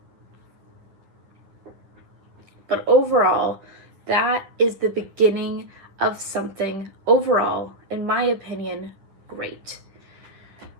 But overall, that is the beginning of something overall, in my opinion, great.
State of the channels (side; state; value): left; late; 10 ms